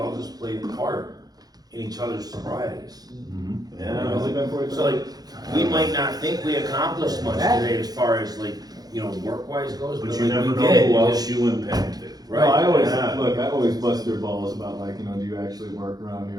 just played a part in each other's sobrieties. Yeah. So like, we might not think we accomplished much today as far as like, you know, work-wise goes, But but you like never we know did. who else you impacted. Right? No, I always, Yeah. look, I always bust their balls about like, you know, do you actually work around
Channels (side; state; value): left; late; 0.19 ms